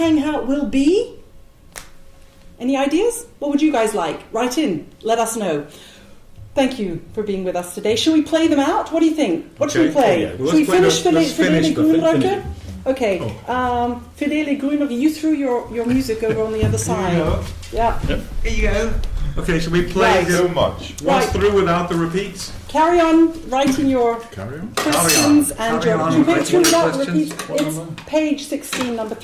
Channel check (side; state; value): both; identical; correlation 1.00